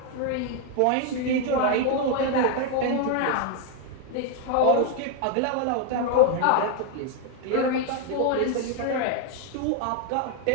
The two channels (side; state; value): both; different; correlation 0.00